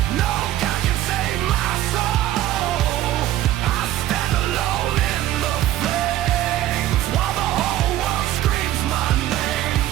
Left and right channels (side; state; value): left; quieter; 13.8 dB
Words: no God can save my soul. I stand alone in the flames while the whole world screams my name.